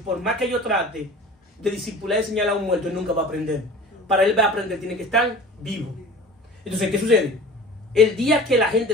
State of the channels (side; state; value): both; normal; correlation 0.40